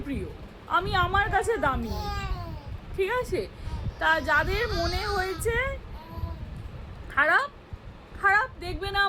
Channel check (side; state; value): both; identical; correlation 1.00